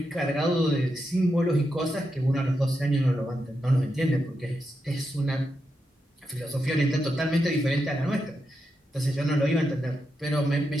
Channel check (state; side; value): normal; both; correlation 0.85